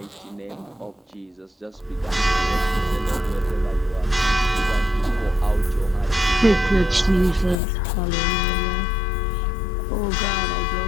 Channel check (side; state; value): right; drops out; at 7.6 s